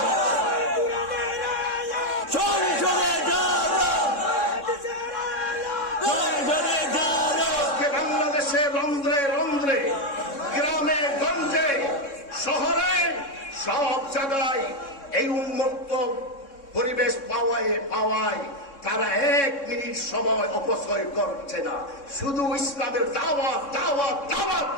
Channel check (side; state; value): right; late; 3.6 ms